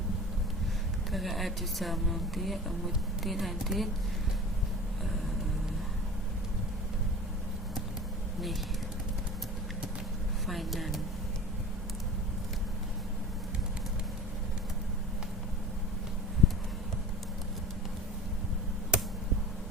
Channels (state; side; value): normal; both; correlation 0.37